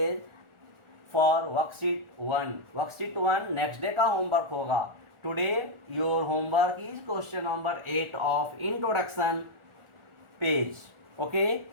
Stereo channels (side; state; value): left; late; 1.4 ms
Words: for worksheet 1। Worksheet 1 next day का homework होगा। Today your homework is question number 8 of introduction page. Okay,